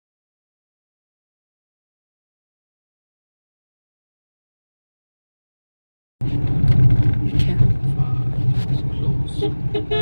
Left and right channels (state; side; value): inverted; both; correlation -1.00